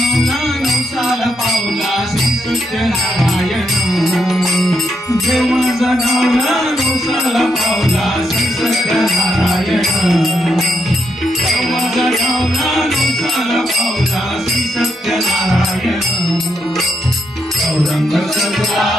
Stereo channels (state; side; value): normal; both; correlation 0.79